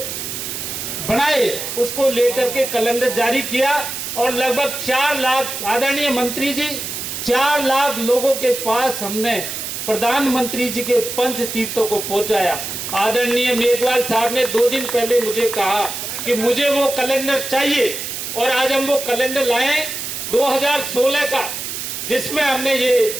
बनाए उसको लेकर के कैलेंडर जारी किया और लगभग 4 लाख आदरणीय मंत्री जी 4 लाख लोगों के पास हमने प्रधानमंत्री जी के पंच तीर्थों को पहुंचाया। आदरणीय मेघवाल साहब ने 2 दिन पहले मुझे कहा कि मुझे वो कैलेंडर चाहिए और आज हम वो कैलेंडर लाए 2016 का, जिसमें हमने ये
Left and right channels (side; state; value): right; noise; hiss, 6 dB below the sound